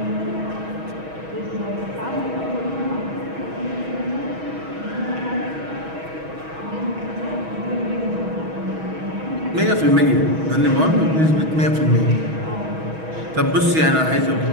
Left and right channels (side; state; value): left; late; 6.3 ms